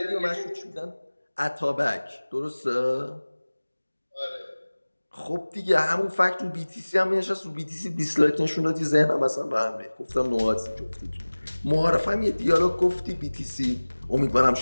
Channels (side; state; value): both; inverted; correlation -1.00